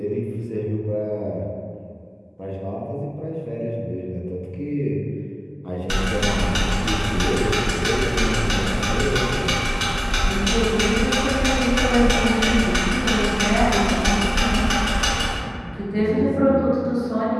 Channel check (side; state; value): both; identical; correlation 1.00